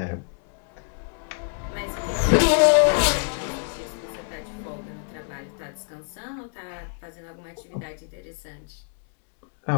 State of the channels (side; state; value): right; silent; digital silence